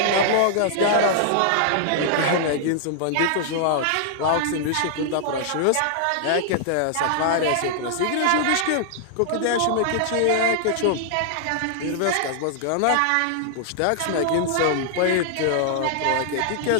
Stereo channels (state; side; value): different; both; correlation -0.01